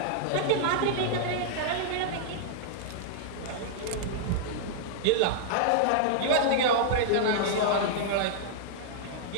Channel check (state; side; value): different; both; correlation -0.02